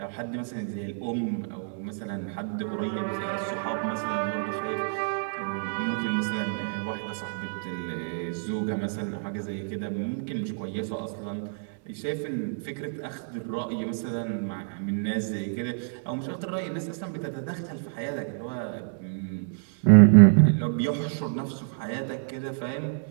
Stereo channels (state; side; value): silent; left; digital silence